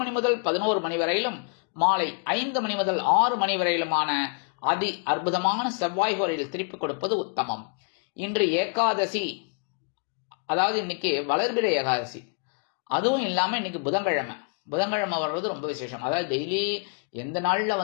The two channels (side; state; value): right; quieter; 39.9 dB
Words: முதல் 11 மணி வரையிலும், மாலை 5 மணி முதல் 6 மணி வரையிலுமான அதி அற்புதமான செவ்வாய் கோரையில் திருப்பிக் கொடுப்பது உத்தமம். இன்று ஏகாதசி, அதாவது இன்னைக்கு வளர்பிறை ஏகாதசி. அதுவும் இல்லாம இன்னைக்கு புதன்கிழமை வர்றது ரொம்ப விசேஷம். அதாவது டெய்லி எந்த நாள்ல